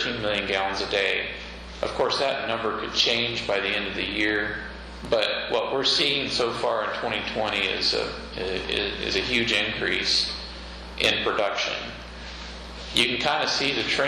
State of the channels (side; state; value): both; identical; correlation 1.00